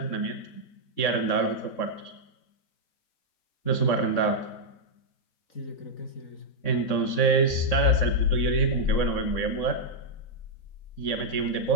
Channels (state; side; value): late; right; 3.7 ms